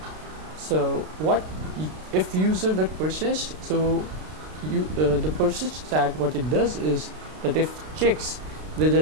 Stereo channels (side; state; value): left; late; 32 ms